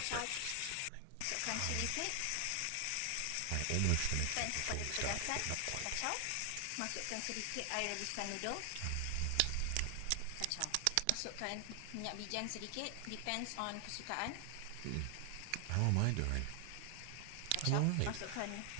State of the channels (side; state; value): both; different; correlation 0.00